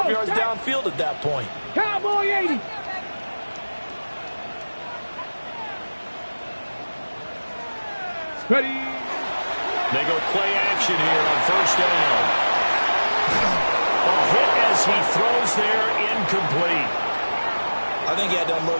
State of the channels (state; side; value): inverted; both; correlation -1.00